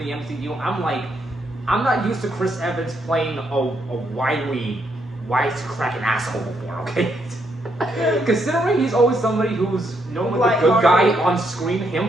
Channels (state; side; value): normal; both; correlation 0.76